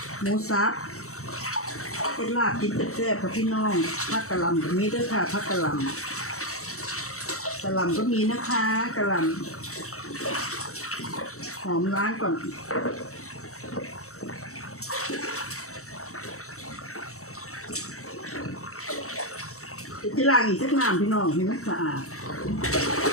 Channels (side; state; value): right; late; 0.64 ms